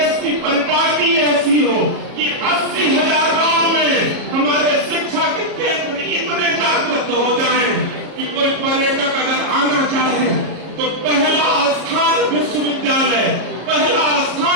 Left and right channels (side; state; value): left; late; 34 ms